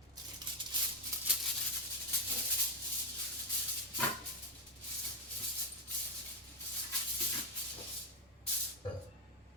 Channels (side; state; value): both; normal; correlation 0.05